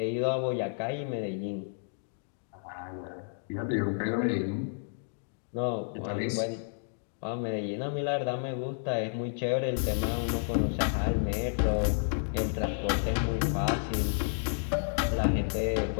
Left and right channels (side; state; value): right; silent; digital silence